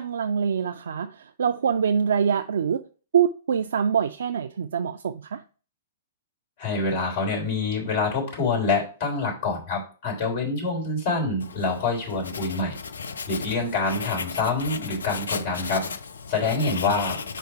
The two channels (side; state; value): both; inverted; correlation -0.35